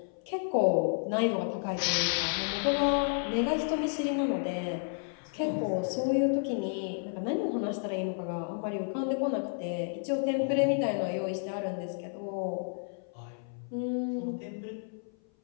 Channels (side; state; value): right; silent; 55 dB below the other